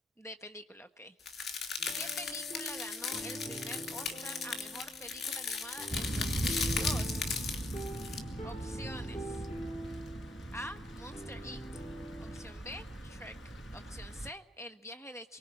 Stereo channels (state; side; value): normal; both; correlation 0.72